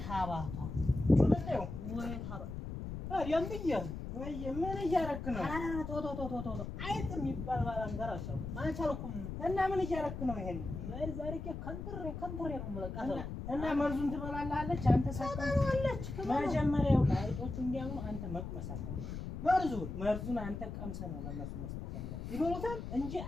ታባቷ ወለደው ወይ ታባ አሪያም ብዬ ወይ ምን እያረክ ነው? ቶቶቶቶቶ አይጥ የሚባል ባላንጋራ አሻው ማቻልኩም እና ምን እያረክ ነው? ይሄን ምን ዛሬ ከንትሬ ነው የምለቃተው እና መርዙን ትበላለች አንተ ሳታውለች መጀመሪያው አይጦቹ እንዲያው አንተ መቅመስ አለብህ። መርዙን አንተ ቀምሰህ ነው ለነሱ መስጠት ያለብህ። ይበሉታል እንጂ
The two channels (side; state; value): left; noise; rumble, 7 dB below the sound